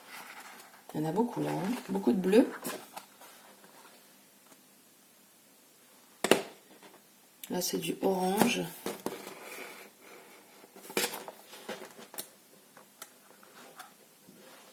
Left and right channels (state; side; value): identical; both; correlation 1.00